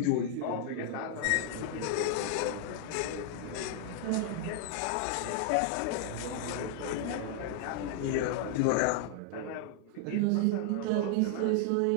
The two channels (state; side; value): different; both; correlation 0.00